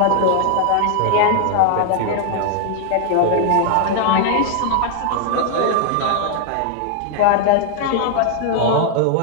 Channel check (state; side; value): different; both; correlation 0.00